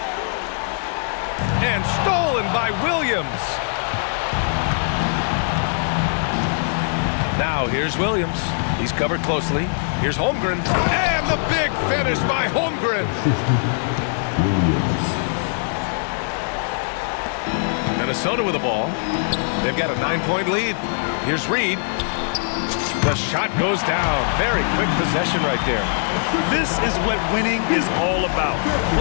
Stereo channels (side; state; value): right; silent; digital silence